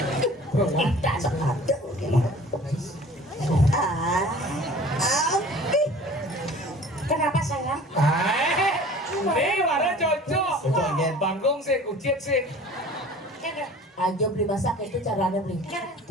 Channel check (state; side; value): normal; both; correlation 0.45